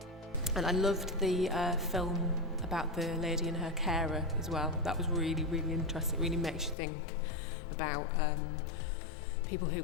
And I loved the film about the lady and her carer as well. That was really, really interesting. It really makes you think about people who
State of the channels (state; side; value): drops out; right; at 6.8 s